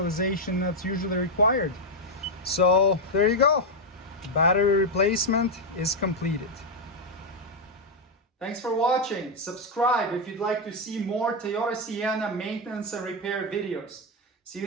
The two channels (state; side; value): normal; both; correlation 0.02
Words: that's usually required. So there you go. Battery replacement is completed. Thanks for watching. Subscribe if you'd like to see more Toyota Sienna maintenance and repair videos. See